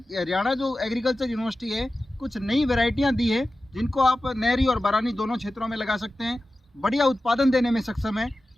जो एग्रीकल्चर यूनिवर्सिटी है कुछ नई वैरायटियां दी है जिनको आप नहरी और बरानी दोनों क्षेत्रों में लगा सकते हैं, बढ़िया उत्पादन देने में सक्षम है।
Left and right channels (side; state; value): both; normal; correlation 0.94